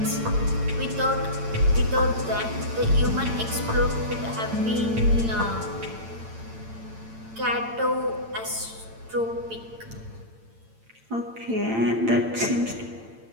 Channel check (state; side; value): late; left; 8.9 ms